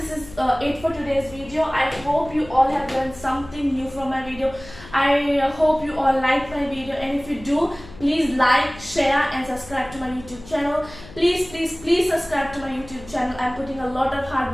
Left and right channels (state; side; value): noise; left; hum, 18 dB below the sound